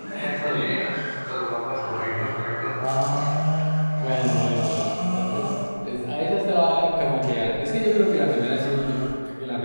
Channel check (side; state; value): both; inverted; correlation -1.00